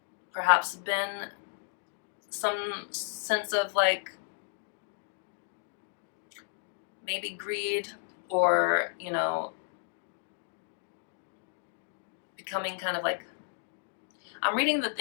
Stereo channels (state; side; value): silent; right; digital silence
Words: perhaps been some sense of like maybe greed or becoming kind of like, I'm reading the